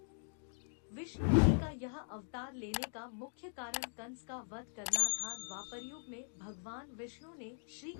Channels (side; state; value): right; silent; digital silence